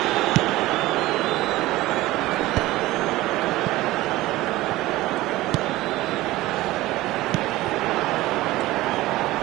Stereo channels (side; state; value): left; quieter; 17.7 dB